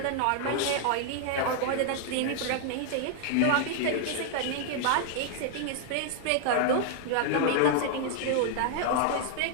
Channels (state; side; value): different; both; correlation 0.00